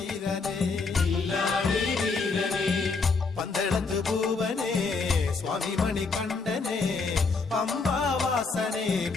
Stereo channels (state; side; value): quieter; right; 4.3 dB